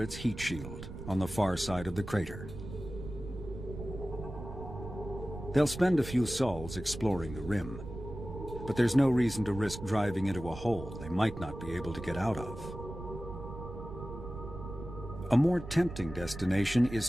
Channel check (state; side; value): noise; right; rumble, 10 dB below the sound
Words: heat shield on the far side of the crater. They'll spend a few sols exploring the rim, but there's no reason to risk driving into a hole they might not be able to get out of. A more tempting destination